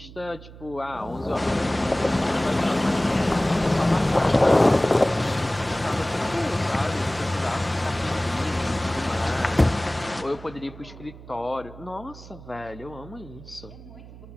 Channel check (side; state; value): right; noise; hum, 17 dB below the sound